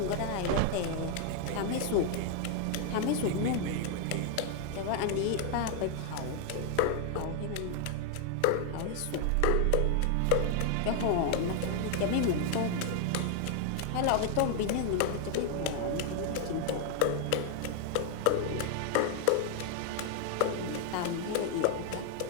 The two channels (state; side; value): different; both; correlation 0.00